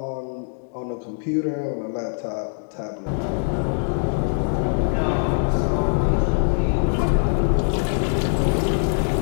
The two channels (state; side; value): silent; right; digital silence